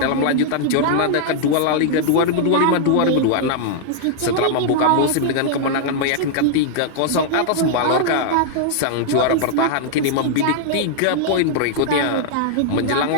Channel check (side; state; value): both; different; correlation -0.01